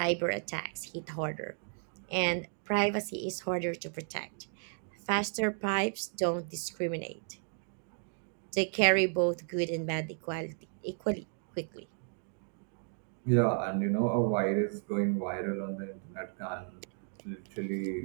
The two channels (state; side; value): silent; left; 55 dB below the other